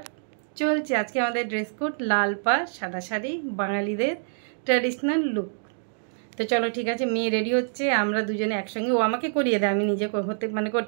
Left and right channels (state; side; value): silent; left; digital silence